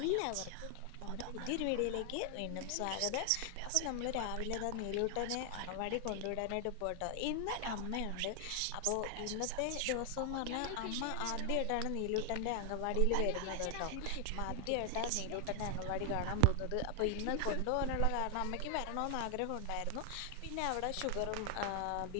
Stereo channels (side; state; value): both; different; correlation 0.00